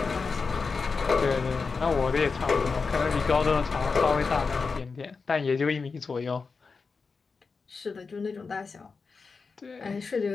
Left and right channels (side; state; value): right; quieter; 4.7 dB